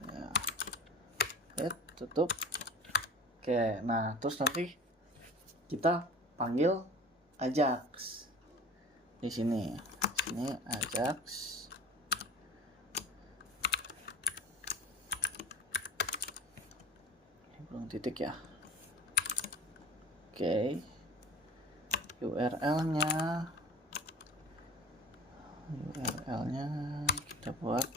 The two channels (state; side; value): normal; both; correlation 0.39